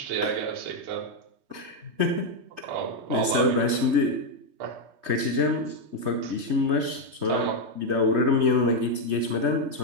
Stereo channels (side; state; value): left; late; 3.2 ms